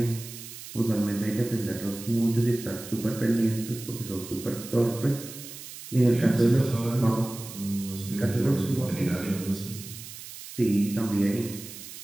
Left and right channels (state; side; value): noise; right; hiss, 13 dB below the sound